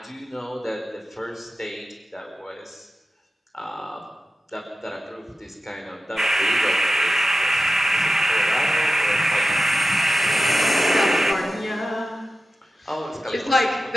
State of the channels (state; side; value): normal; both; correlation 0.93